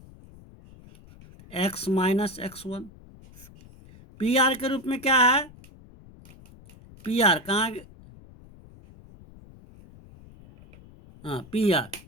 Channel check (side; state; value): left; noise; rumble, 22 dB below the sound